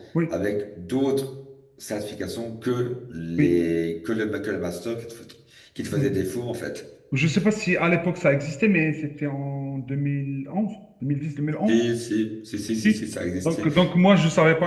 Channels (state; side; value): identical; both; correlation 1.00